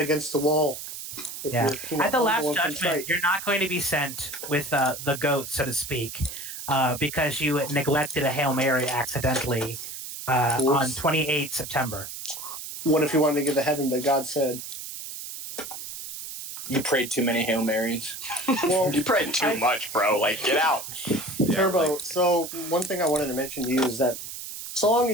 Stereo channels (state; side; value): noise; right; hiss, 9 dB below the sound